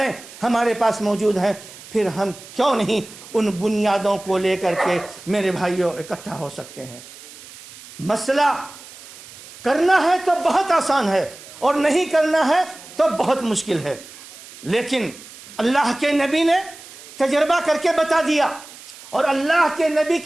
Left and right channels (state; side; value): noise; right; hiss, 18 dB below the sound